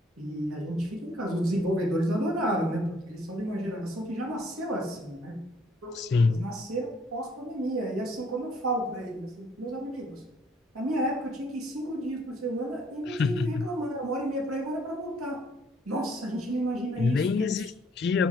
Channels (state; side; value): normal; both; correlation 0.64